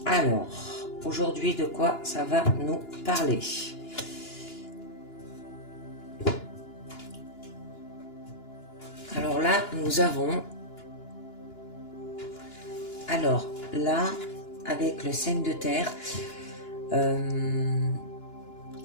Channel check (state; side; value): late; right; 2.9 ms